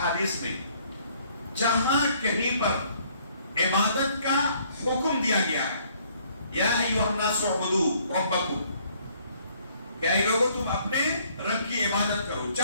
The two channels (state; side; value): inverted; both; correlation -0.63